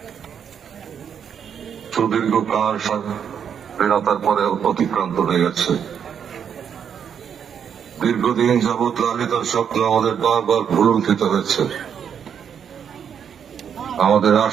সুদীর্ঘ কাল স্বাধীনতার পরে অতিক্রান্ত হয়ে গেছে। দীর্ঘদিন যাবৎ লালিত স্বপ্ন আমাদের বারবার ভুলুণ্ঠিত হয়েছে। আমাদের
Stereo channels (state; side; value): quieter; left; 7.9 dB